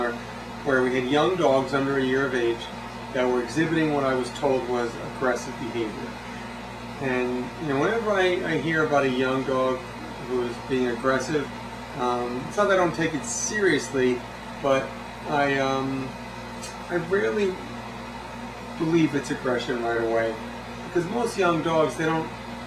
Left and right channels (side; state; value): both; identical; correlation 1.00